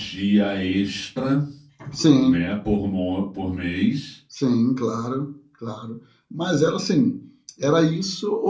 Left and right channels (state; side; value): identical; both; correlation 1.00